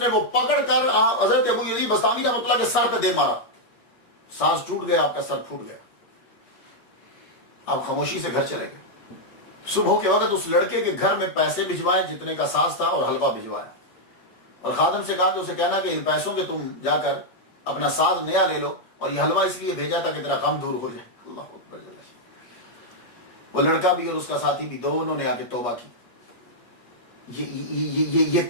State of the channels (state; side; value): late; right; 8.4 ms